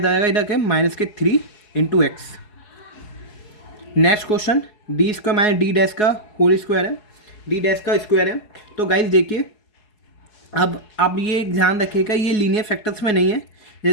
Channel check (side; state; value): right; late; 4.7 ms